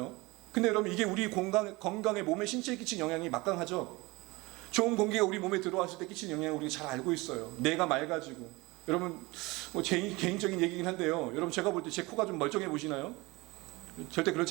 근데 여러분, 이게 우리 건강에, 몸에, 신체에 끼친 영향이 막강하죠. 좋은 공기가 우리 몸에 들어왔을 때 끼친 영향을 우리가 잘 알고 있어요. 뇌가 맑아지고. 여러분, 뭐 제 개인적인 얘기긴 한데요. 여러분, 제가 볼 때 제 코가 좀 멀쩡해 보시나요? 절대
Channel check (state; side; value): quieter; left; 23.2 dB